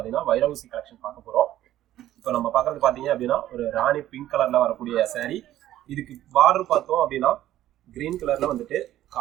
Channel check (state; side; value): quieter; left; 13.3 dB